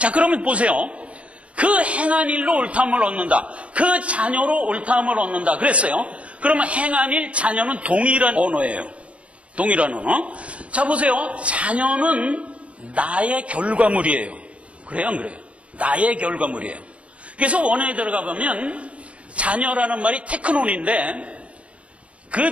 그러면 보세요. 그 행한 일로 옳다함을 얻는다. 그 자녀로 옳다함을 얻는다 그랬어요. 그러면 행한 일, 자녀는 동일한 언어예요. 동일한 언어. 자, 보세요. 자녀는 나의 결과물이에요. 그래요, 안 그래요? 나의 결과물이에요. 그래서 원어에 들어가 보면 자녀라는 말이 테크논인데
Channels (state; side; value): late; left; 0.062 ms